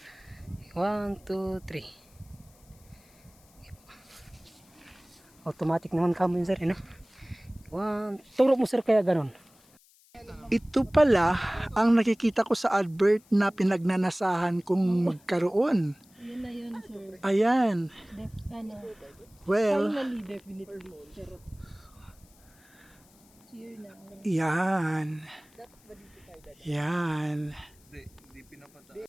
1, 2, 3. Automatic naman kamo yun, sir, no? 1. Turo mo, sir, kaya ganon. Ito pala ang nakikita ko sa advert na pinagnanasahan kong magkaroon. Yun na yun, sir. Ayan. Ano, Well, finally, definitely. Charot. Cheer na. yan. Yan.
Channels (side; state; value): left; noise; hiss, 29 dB below the sound